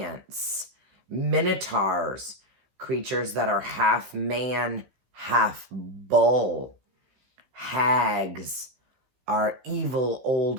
Minotaurs, creatures that are half man, half bull. Hags are evil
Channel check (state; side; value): late; left; 16 ms